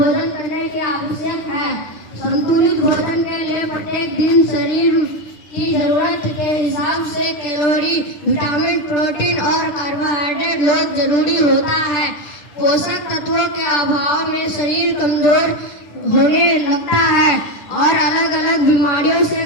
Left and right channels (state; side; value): late; right; 10 ms